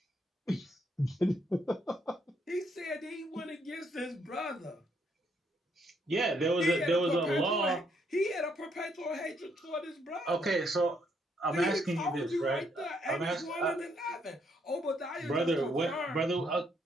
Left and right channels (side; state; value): both; normal; correlation 0.73